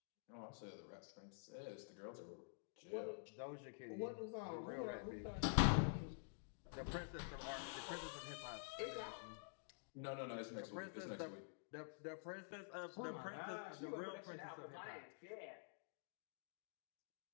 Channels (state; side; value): silent; right; digital silence